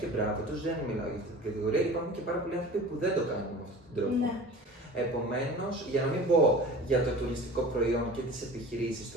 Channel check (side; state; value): both; normal; correlation 0.39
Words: μπράβο τους, δεν μιλάω για αυτή την κατηγορία. Υπάρχουν και πάρα πολλοί άνθρωποι που δεν το κάνουν με αυτόν τον τρόπο. Ναι. Επομένως, για να μην πω για το τουριστικό προϊόν και τις επιχειρήσεις,